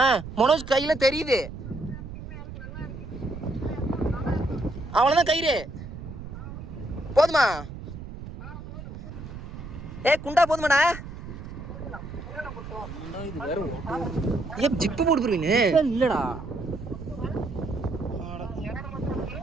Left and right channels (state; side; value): noise; right; rumble, 11 dB below the sound